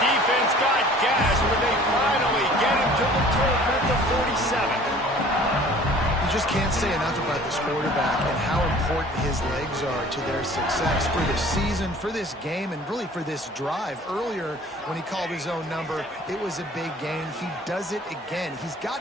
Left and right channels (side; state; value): both; normal; correlation 0.49